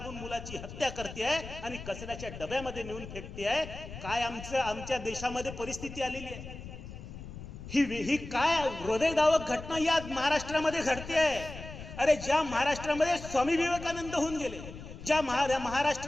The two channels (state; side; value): noise; left; rumble, 12 dB below the sound